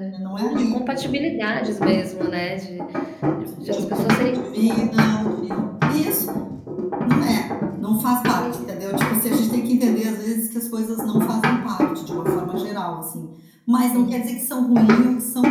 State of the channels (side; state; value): both; identical; correlation 1.00